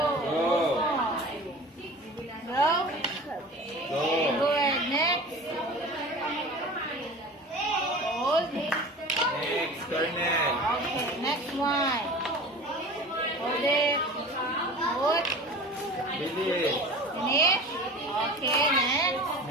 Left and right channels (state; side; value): normal; both; correlation 0.37